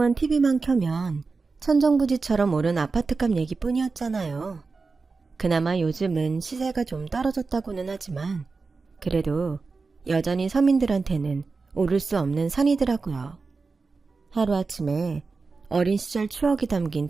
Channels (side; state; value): left; quieter; 4.3 dB